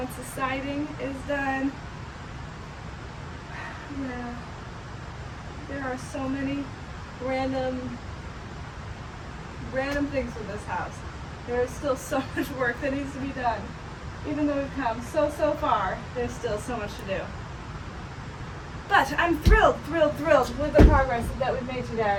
the siding is done, yeah, there are so many random things with this house. There is still so much work that needs to be done. Even though we've come so far, there's still so much to do. But I'm thrilled with the progress that we've made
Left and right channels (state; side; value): identical; both; correlation 1.00